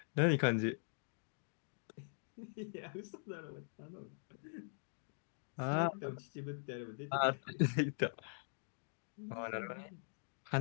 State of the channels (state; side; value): silent; right; digital silence